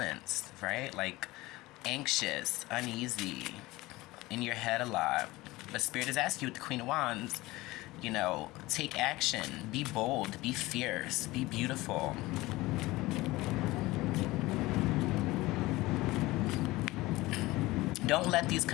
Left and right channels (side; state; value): right; quieter; 19.7 dB